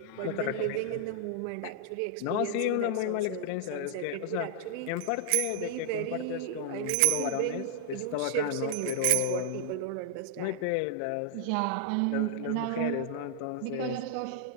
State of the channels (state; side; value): different; both; correlation -0.01